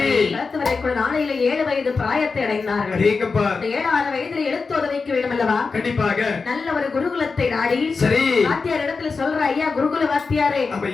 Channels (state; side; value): quieter; right; 4.6 dB